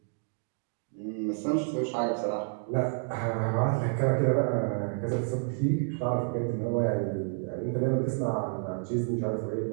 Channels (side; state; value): left; silent; 58 dB below the other